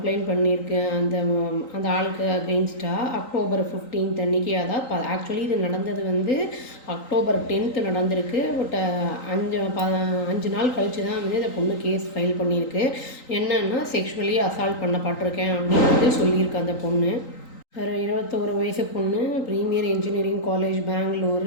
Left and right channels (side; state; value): right; late; 3.9 ms